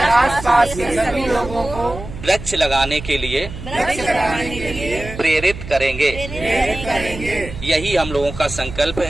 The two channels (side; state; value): right; noise; hum, 12 dB below the sound